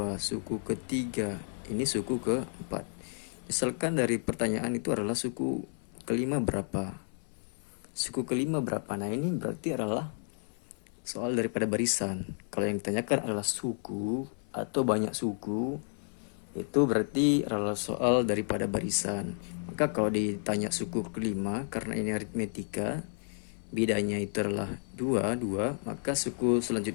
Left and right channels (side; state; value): right; silent; 57 dB below the other